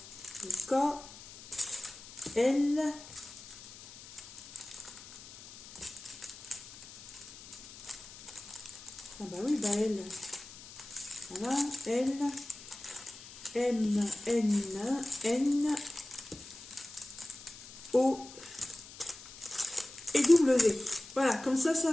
Le K. L. Ah bah oui, bah L. Voilà. L. M. N. N. O. Et W. Voilà, comme ça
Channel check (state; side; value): noise; left; hiss, 16 dB below the sound